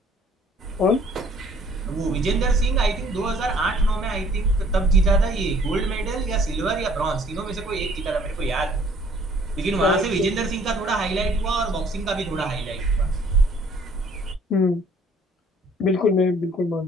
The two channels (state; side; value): normal; both; correlation 0.58